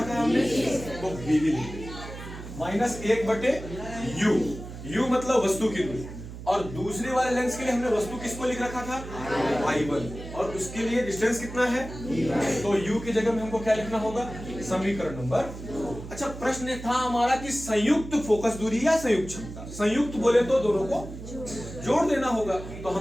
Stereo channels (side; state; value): right; noise; hum, 11 dB below the sound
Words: है हमने, तो v लिख दिया, -1/u। u मतलब वस्तु की दूरी, और दूसरे वाले लेंस के लिए हमने वस्तु किसको लिख रखा था, I1, और उसके लिए डिस्टेंस कितना है, तो u की जगह में हमको क्या लिखना होगा, समीकरण नंबर। अच्छा प्रश्न था हमारा कि संयुक्त फोकस दूरी या संयुक्त क्षमता, संयुक्त बोले तो दोनों को जोड़ देना होगा, तो